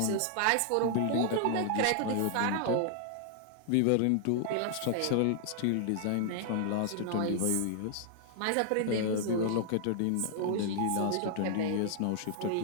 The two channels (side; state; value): both; different; correlation -0.01